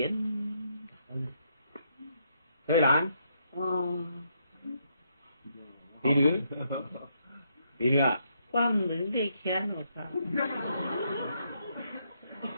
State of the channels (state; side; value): inverted; both; correlation -0.76